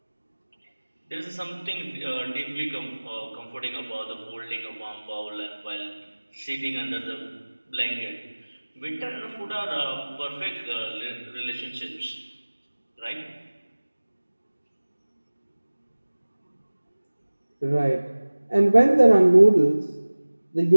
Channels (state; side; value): inverted; both; correlation -1.00